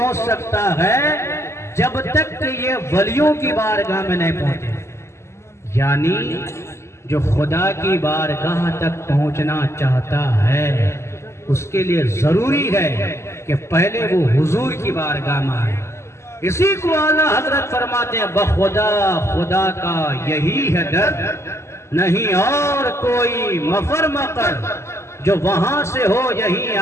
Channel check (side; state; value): right; late; 0.13 ms